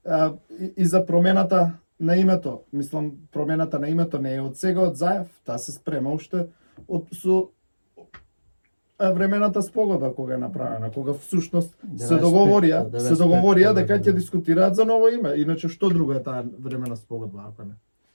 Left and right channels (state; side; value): inverted; both; correlation -1.00